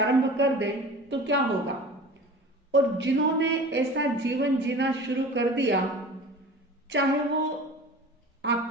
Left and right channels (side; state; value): both; normal; correlation 0.39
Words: कर दे तो क्या होगा। और जिन्होंने ऐसा जीवन जीना शुरू कर दिया, चाहे वो